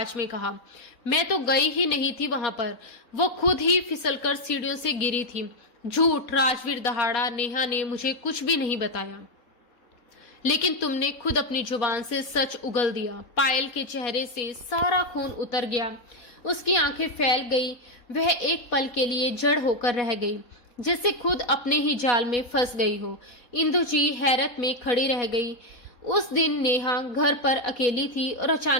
में कहा। मैं तो गई ही नहीं थी वहां पर, वो खुद ही फिसलकर सीढ़ियों से गिरी थी। झूठ, राजवीर दहाड़ा। नेहा ने मुझे कुछ भी नहीं बताया, लेकिन तुमने खुद अपनी जुबान से सच उगल दिया। पायल के चेहरे से सारा खून उतर गया, उसकी आंखें फैल गई। वह एक पल के लिए जड़ होकर रह गई, जैसे खुद अपने ही जाल में फंस गई हो। इंदु जी हैरत में खड़ी रह गई। उस दिन नेहा घर पर अकेली थी और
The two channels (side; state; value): right; late; 4.1 ms